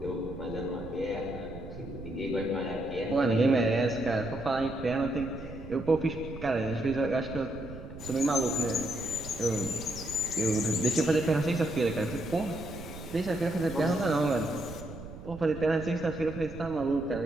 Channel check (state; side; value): noise; right; rumble, 12 dB below the sound